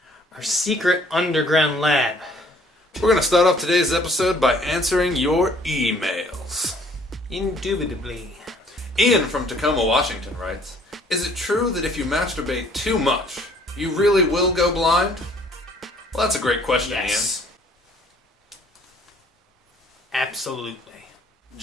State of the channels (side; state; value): both; normal; correlation 0.58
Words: our secret underground lab. We're going to start off today's episode by answering your emails. Indubitably. Ian from Tacoma, Washington writes, is it true that if you masturbate too much, you really will go blind? Well, that's a great question, Yes. Absolutely. Ian.